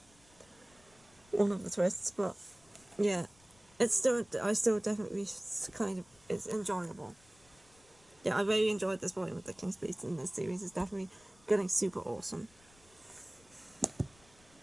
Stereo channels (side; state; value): left; noise; rumble, 28 dB below the sound